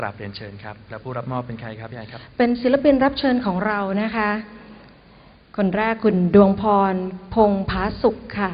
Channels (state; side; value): identical; both; correlation 1.00